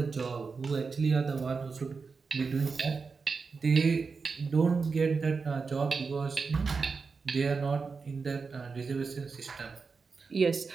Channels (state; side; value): quieter; left; 4.9 dB